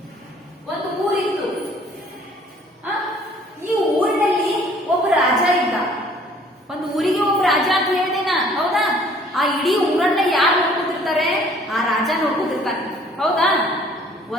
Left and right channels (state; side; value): normal; both; correlation 0.57